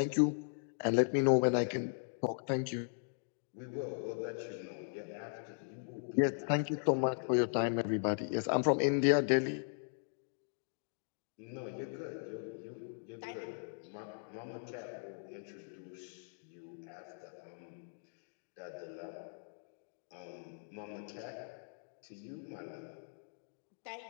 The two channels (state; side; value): silent; right; digital silence